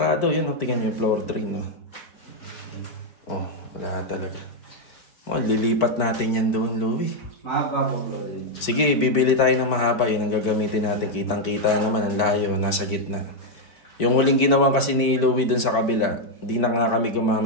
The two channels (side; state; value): right; late; 4.5 ms